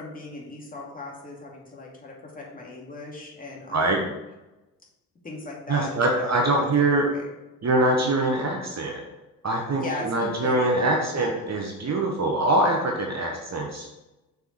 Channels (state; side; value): normal; both; correlation 0.10